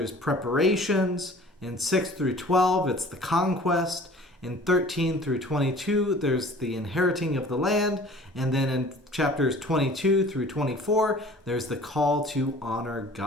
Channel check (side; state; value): both; normal; correlation 0.47